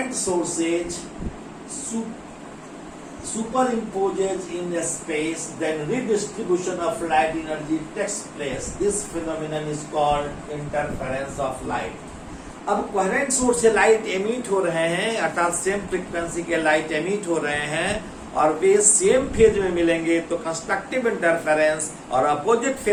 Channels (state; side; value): identical; both; correlation 1.00